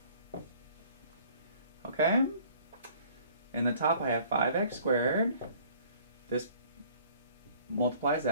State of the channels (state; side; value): inverted; both; correlation -0.54